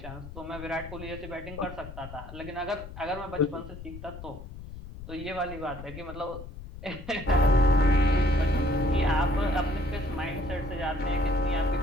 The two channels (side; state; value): left; noise; rumble, 13 dB below the sound